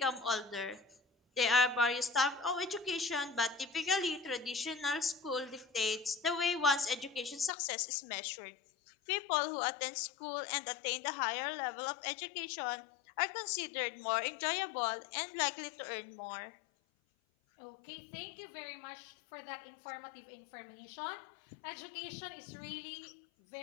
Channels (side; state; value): right; drops out; at 7.5 s